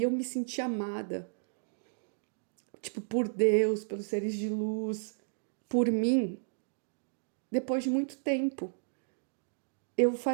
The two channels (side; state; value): left; silent; digital silence